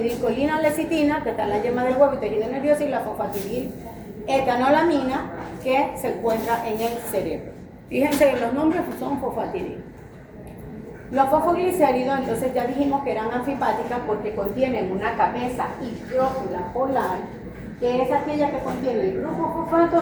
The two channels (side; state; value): both; identical; correlation 1.00